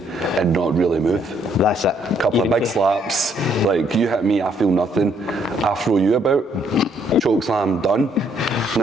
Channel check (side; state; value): both; normal; correlation 0.69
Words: and not really move. That's it. A couple of big slaps, like you hit me, I feel nothing. I throw you about, choke slam, done.